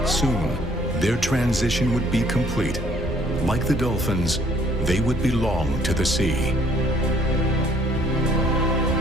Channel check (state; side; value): normal; both; correlation 0.62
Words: Soon, their transition would be complete. Like the dolphins, they would belong to the sea.